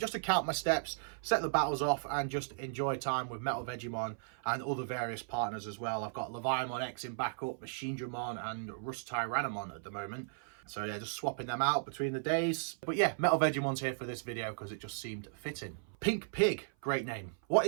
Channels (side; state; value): left; silent; 54 dB below the other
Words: to count my steps, set the battles off, and just enjoy time with MetalVegiemon and other various partners as well. I've got Leviamon X in backup, Machinedramon and Rust Tyrannomon at the moment. So yeah, just swapping them out between the days. But yeah, MetalVegimon's here for this video because it just seemed fitting. Pink Pig, great name. What